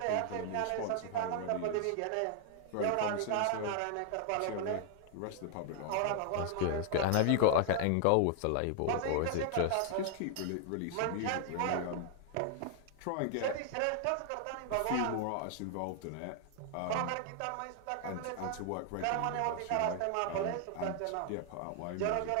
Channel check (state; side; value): different; both; correlation 0.00